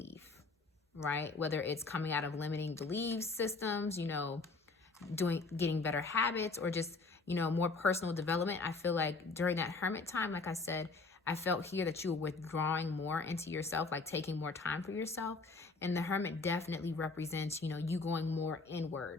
right? Whether it's coming out of limiting belief systems, you know, getting better habits, or just, you know, more personal development. I feel like during that hermit time, like I said, I felt here that you were withdrawing more into yourself, like taking more time for yourself. And the hermit definitely represents, you know, you going more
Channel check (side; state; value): right; quieter; 3.8 dB